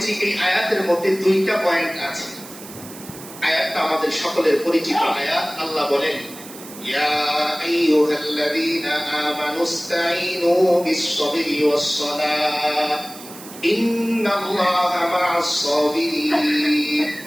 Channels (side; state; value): right; noise; hiss, 16 dB below the sound